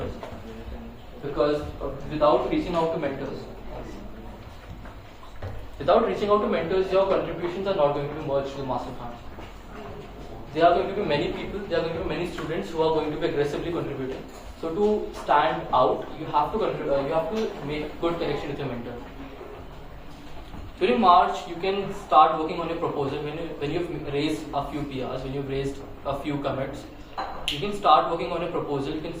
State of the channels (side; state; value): both; identical; correlation 1.00